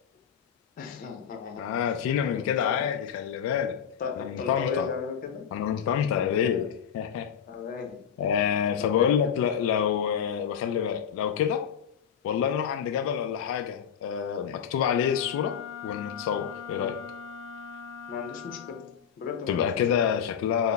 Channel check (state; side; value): quieter; right; 8.1 dB